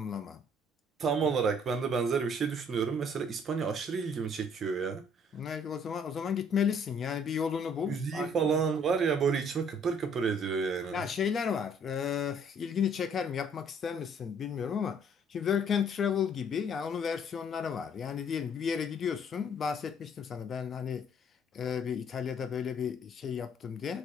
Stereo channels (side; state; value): both; normal; correlation 0.61